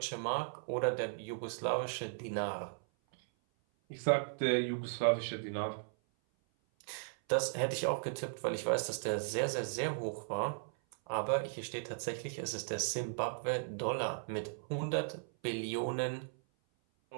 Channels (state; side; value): silent; left; 53 dB below the other